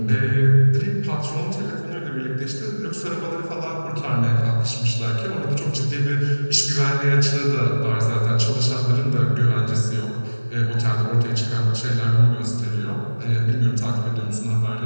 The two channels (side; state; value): both; inverted; correlation -1.00